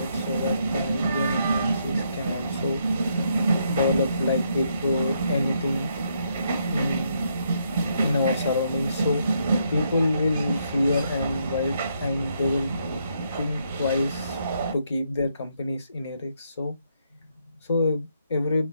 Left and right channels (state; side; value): inverted; both; correlation -0.75